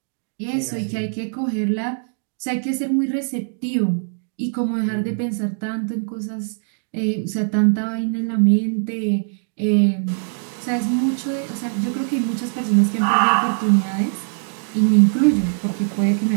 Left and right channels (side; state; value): left; silent; digital silence